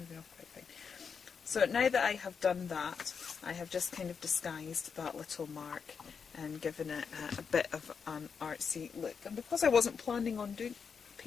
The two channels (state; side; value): quieter; right; 6.1 dB